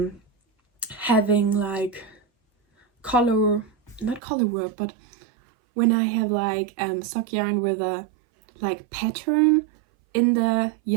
having like not color work, but when I have like sock yarn with a like pattern in the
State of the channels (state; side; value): drops out; left; at 4.2 s